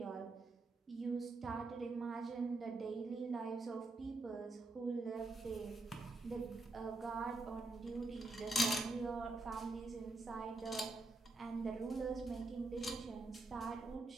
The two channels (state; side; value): quieter; left; 3.1 dB